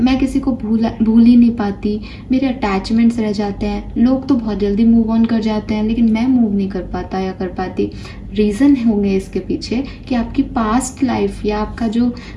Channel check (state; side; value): identical; both; correlation 1.00